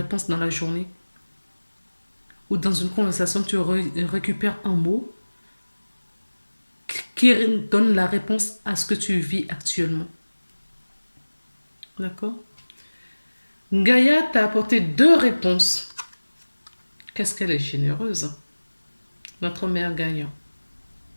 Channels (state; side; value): inverted; both; correlation -1.00